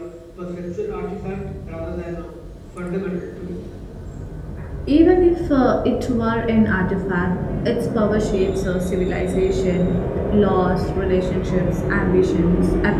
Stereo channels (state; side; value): identical; both; correlation 1.00